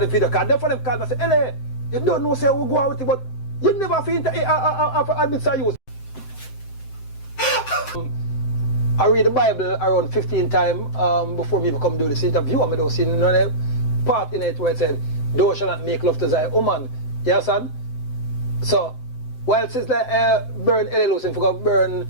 video because then for them call me and say, LA, you don't know say we go out with it, but you never feel to admit to use. I read the Bible around 15 times before me come do this interview, and I don't see no part in it where it said, thou shall not make love to thy woman. You understand? So, while Sizzla burn LA Lewis and forgot burn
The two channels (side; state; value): right; late; 7.8 ms